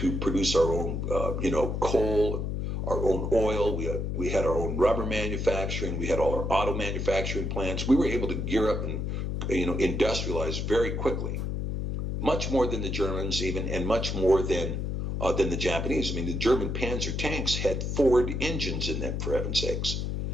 produce our own, you know, coal, our own oil. We had our own rubber manufacturing. We had all our auto manufacturing plants. We were able to gear up and, you know, industrialize very quickly, much more than the Germans even, and much more than the Japanese. I mean, the German Panzer tanks had Ford engines in them, for heaven's sakes.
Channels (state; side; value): noise; left; hum, 2 dB below the sound